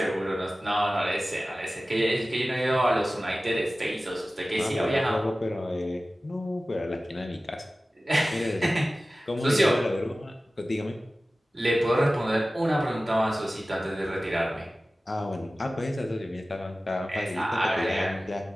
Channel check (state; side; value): normal; both; correlation 0.96